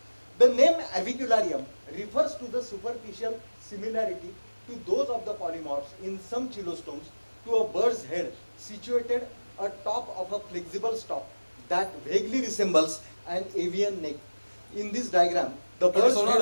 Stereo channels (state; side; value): inverted; both; correlation -1.00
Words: The name avicularium refers to the superficial similarity to those of the polymorphs in some chelostomes to a bird's head situated atop of a flexible stalk that vaguely resembles an avian neck. In this diagram, the bird's